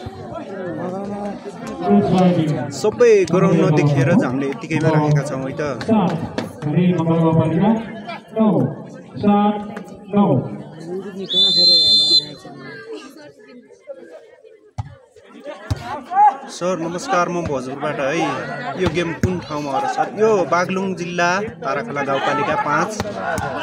सबै ग्राउन्ड नदेखेर हामीले यतिकैमा राखेका छौँ है त। सर नमस्कार, म भोजपुरबाट है। यो गेम कुन ठाउँमा हो र सर? यो बागलुङ जिल्ला ताराखोला गाउँपालिका 5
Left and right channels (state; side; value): identical; both; correlation 1.00